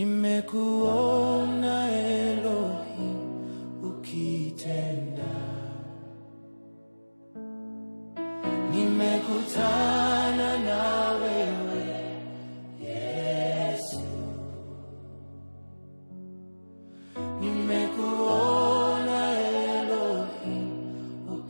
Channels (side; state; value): both; inverted; correlation -1.00